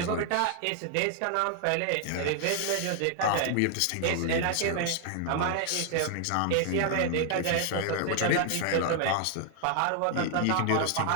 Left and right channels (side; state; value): both; different; correlation 0.00